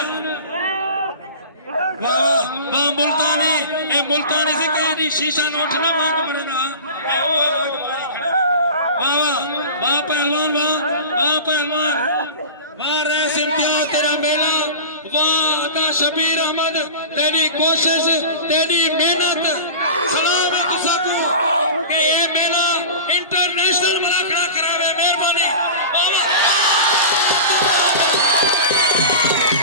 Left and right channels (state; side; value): inverted; both; correlation -0.33